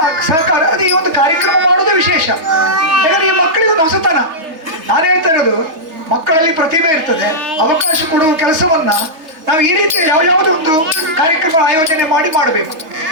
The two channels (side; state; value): left; late; 3.3 ms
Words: ಸಹಕಾರ, ಅದು ಈ ಒಂದು ಕಾರ್ಯಕ್ರಮ ಮಾಡೋದೇ ವಿಶೇಷ. ಯಾಕಂದರೆ ಈ ಮಕ್ಕಳಿಗೆ ಒಂದು ಹೊಸತನ. ನಾನು ಹೇಳ್ತಾ ಇರೋದು, ಮಕ್ಕಳಲ್ಲಿ ಪ್ರತಿಭೆ ಇರ್ತದೆ, ಅವಕಾಶ ಕೊಡುವ ಕೆಲಸವನ್ನು ನಾವು ಈ ರೀತಿ ಯಾವುದೋ ಒಂದು ಕಾರ್ಯಕ್ರಮ ಆಯೋಜನೆ ಮಾಡಬೇಕು.